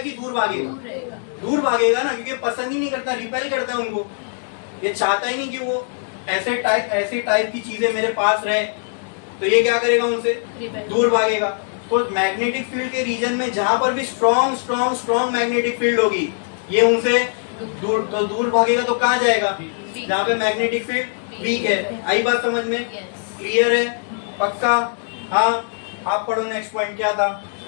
दूर भागेगा? दूर भागेगा ना, क्योंकि पसंद ही नहीं करता, रिपेल करता है उनको। ये चाहता ही नहीं कि वो ऐसे टाइप की चीजें मेरे पास रहे, तो ये क्या करेगा, उनसे दूर भागेगा। तो मैग्नेटिक फील्ड के रीजन में जहां पर भी स्ट्रॉन्ग मैग्नेटिक फील्ड होगी, ये उनसे दूर भागेगा। तो कहाँ जाएगा, जहाँ पे मैग्नेटिक फील्ड वीक है। आई बात समझ में? क्लियर है? पक्का? हाँ, आप पढ़ो नेक्स्ट पॉइंट क्या था।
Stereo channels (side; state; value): right; silent; digital silence